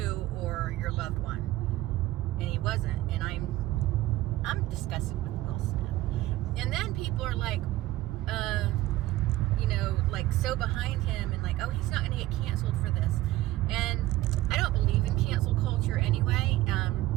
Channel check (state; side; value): quieter; left; 16.2 dB